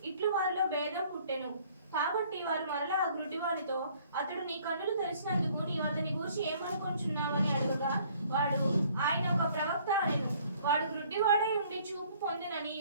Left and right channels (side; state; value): both; inverted; correlation -0.58